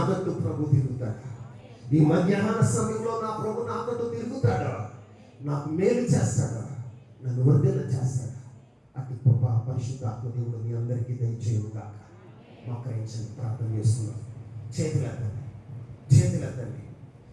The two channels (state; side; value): identical; both; correlation 1.00